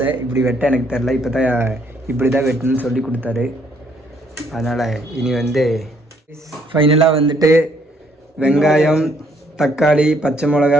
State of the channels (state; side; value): normal; both; correlation 0.68